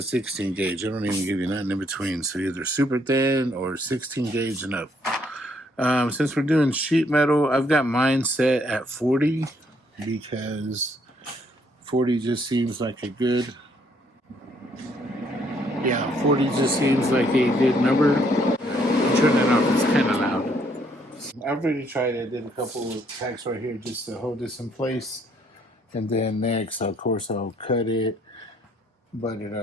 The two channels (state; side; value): normal; both; correlation 0.68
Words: 16 gauge. I don't even give you nothing in between. So either super thin or 16 gauge and up. Since we're doing sheet metal, I've got mine set at 40 because 40 just seems like a good, 40 just seems like a good number. Turn it off, it's kind of loud. I've already tried it. I did a couple of tacks right here just to hold this in place. And then next, of course, I'll cut it, butt it